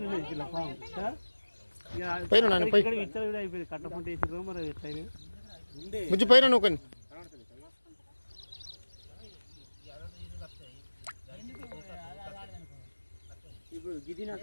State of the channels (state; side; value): inverted; both; correlation -1.00